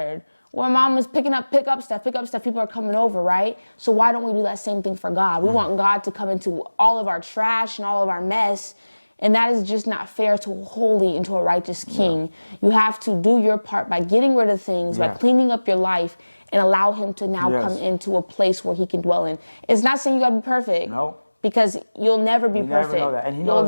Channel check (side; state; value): both; inverted; correlation -1.00